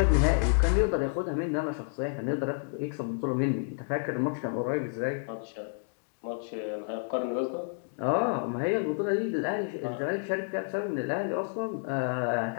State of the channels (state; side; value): silent; right; digital silence